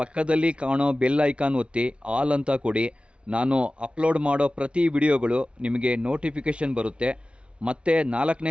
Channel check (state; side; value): late; left; 0.059 ms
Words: ಕಾಣೋ ಬೆಲ್ ಐಕಾನ್ ಒತ್ತಿ ಆಲ್ ಅಂತ ಕೊಡಿ. ನಾನು ಅಪ್ಲೋಡ್ ಮಾಡೋ ಪ್ರತಿ ವಿಡಿಯೋಗಳು ನಿಮಗೆ ನೋಟಿಫಿಕೇಷನ್ ಬರುತ್ತೆ. ಮತ್ತೆ